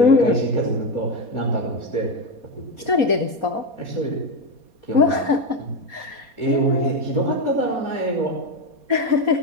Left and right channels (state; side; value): late; left; 4.2 ms